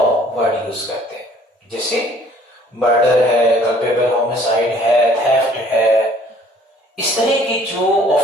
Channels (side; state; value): both; normal; correlation 0.56